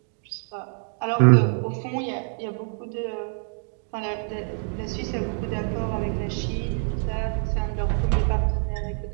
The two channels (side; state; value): left; silent; 56 dB below the other